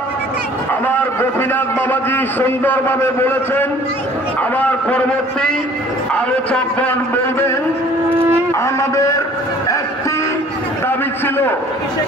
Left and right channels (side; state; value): both; normal; correlation 0.52